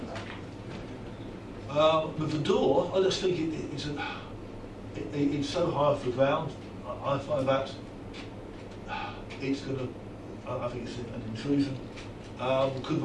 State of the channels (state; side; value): identical; both; correlation 1.00